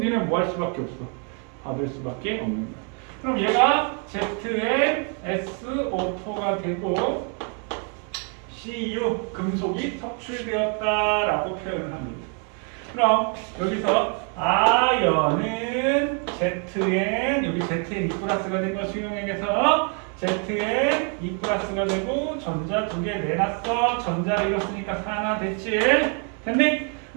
니네는 뭐 할 수밖에 없어? 받을 수밖에 없는 거야. 그럼 얘가 ZnSO4가 되고 Cu 금속이 섭출되었다라고 표현을 합니다. 그럼 여기서 아연은 Zn 여기 Zn 2+가 된 거 수용액에서 Zn 2+가 되고 전자 2개 내놨어. 전자를 잃었으니까 4나 됐지? 됐니?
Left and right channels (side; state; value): left; quieter; 39.7 dB